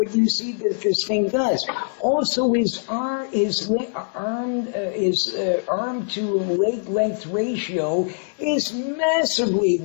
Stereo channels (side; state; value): right; silent; digital silence